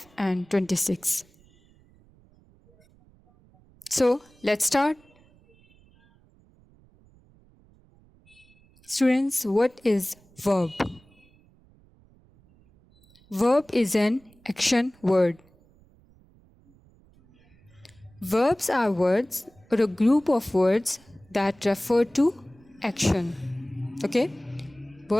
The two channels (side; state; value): right; noise; rumble, 30 dB below the sound